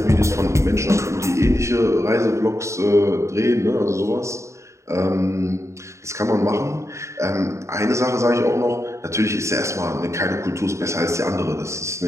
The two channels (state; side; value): late; left; 0.14 ms